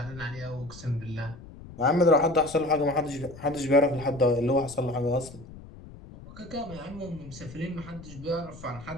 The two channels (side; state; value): left; noise; rumble, 17 dB below the sound